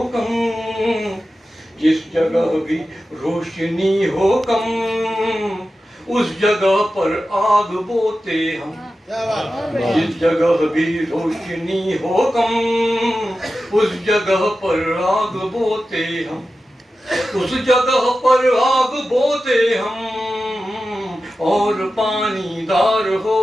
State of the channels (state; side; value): normal; both; correlation 0.93